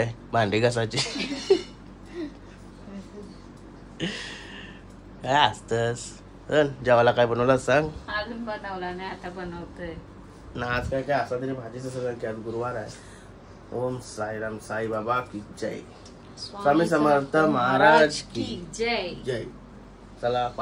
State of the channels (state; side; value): identical; both; correlation 1.00